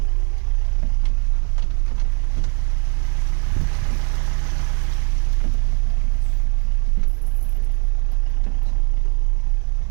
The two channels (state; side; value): quieter; left; 34.7 dB